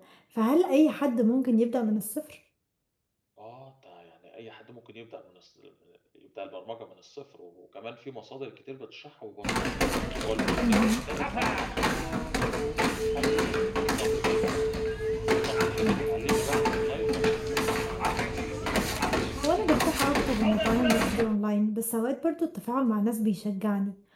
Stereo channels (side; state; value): both; identical; correlation 1.00